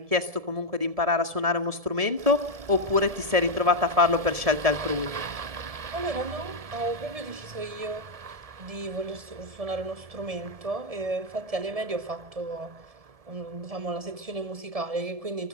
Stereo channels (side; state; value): left; late; 1.7 ms